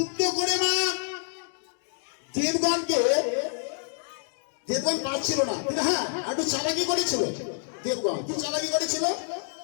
করে মা দেবগণকে, দেবগণ পারছিল না, কিন্তু হ্যাঁ একটু চালাকি করেছিল। দেবগণ কি চালাকি করেছিল?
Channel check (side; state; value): right; silent; 60 dB below the other